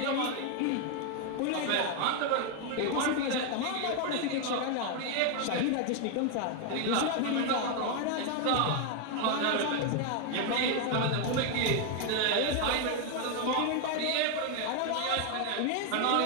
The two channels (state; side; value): different; both; correlation 0.01